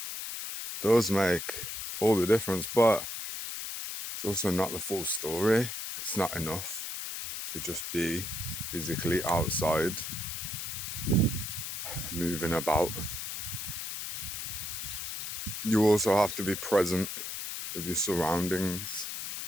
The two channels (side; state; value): left; noise; hiss, 5 dB below the sound